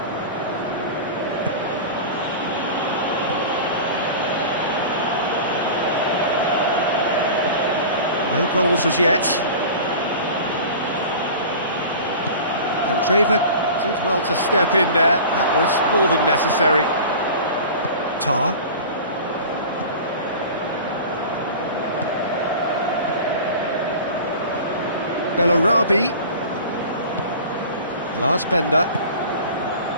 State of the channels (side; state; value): both; inverted; correlation -0.36